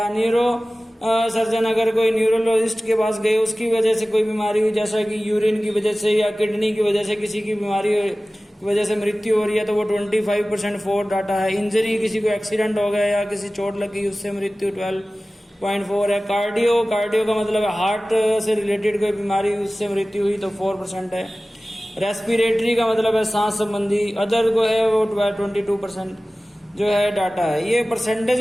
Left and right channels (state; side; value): normal; both; correlation 0.97